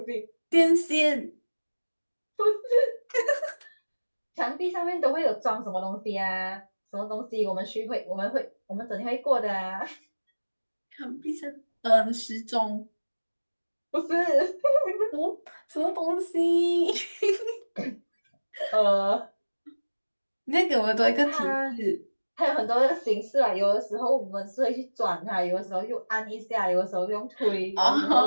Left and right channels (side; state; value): both; inverted; correlation -1.00